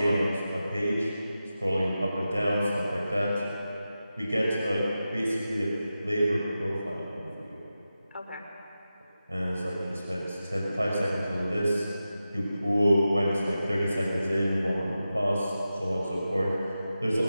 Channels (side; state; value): both; inverted; correlation -0.92